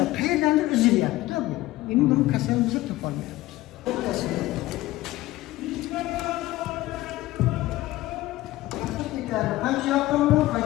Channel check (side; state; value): right; quieter; 17.2 dB